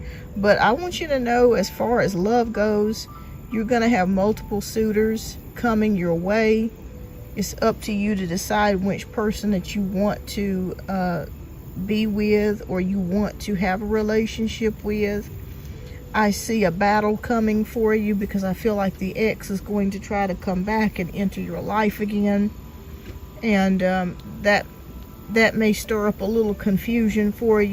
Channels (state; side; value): identical; both; correlation 1.00